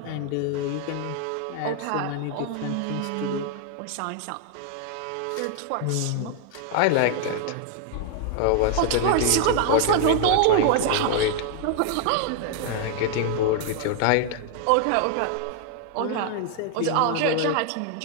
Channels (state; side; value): different; both; correlation 0.00